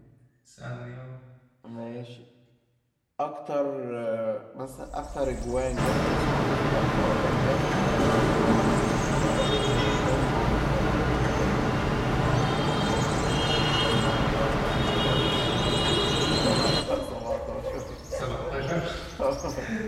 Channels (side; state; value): both; identical; correlation 1.00